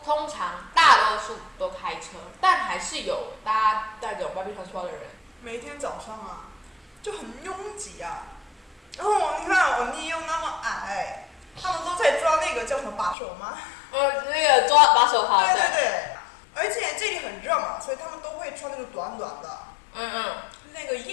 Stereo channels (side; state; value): right; drops out; at 13.2 s